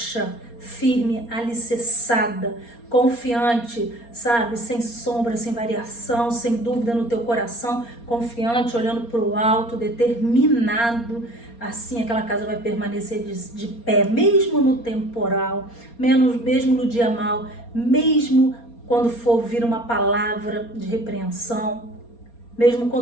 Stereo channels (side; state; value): right; late; 4.3 ms